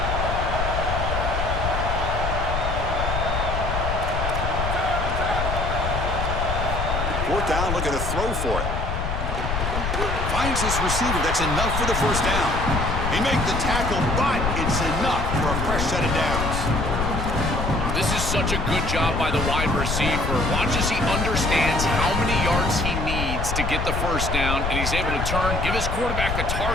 Down, look at a throw for it. Finds his receiver. That's enough for the first down. He makes the tackle, but it's enough for a fresh set of downs. This is such a good job by the wide receiver. Watch as he understands how many yards he needs to get the first down, and he's able to turn, give his quarterback a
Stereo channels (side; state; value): left; noise; rumble, 2 dB below the sound